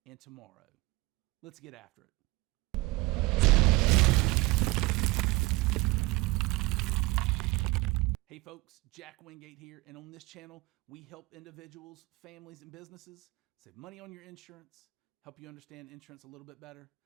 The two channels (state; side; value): quieter; left; 22.2 dB